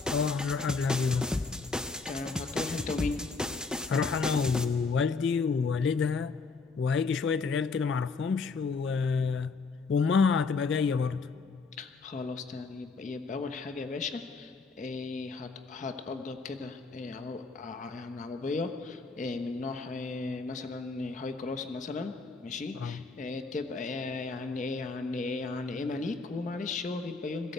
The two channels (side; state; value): right; quieter; 4.4 dB